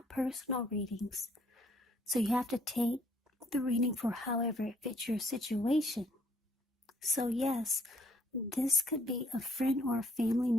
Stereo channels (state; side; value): normal; both; correlation 0.64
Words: personal readings. So you have to take the reading for however it fits your situation. So yes, this could be a friend or a family